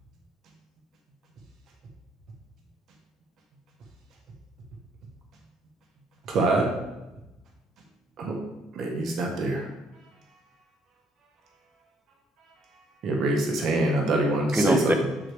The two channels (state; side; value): normal; both; correlation 0.69